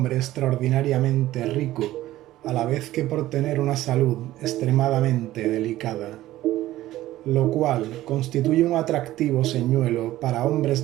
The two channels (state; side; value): quieter; left; 15.3 dB